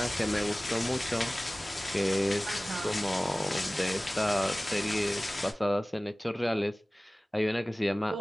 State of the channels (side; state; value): both; normal; correlation 0.98